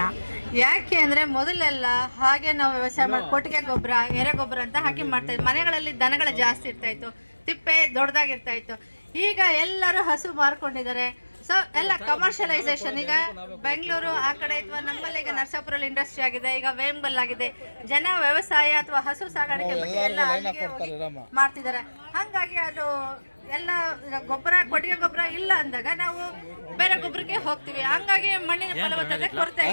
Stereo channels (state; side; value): inverted; both; correlation -1.00